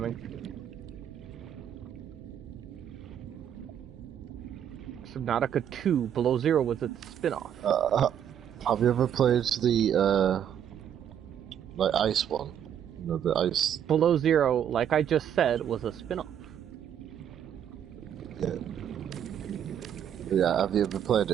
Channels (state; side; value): quieter; left; 9.3 dB